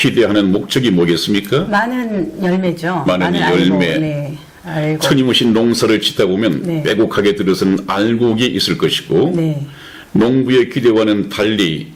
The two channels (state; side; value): identical; both; correlation 1.00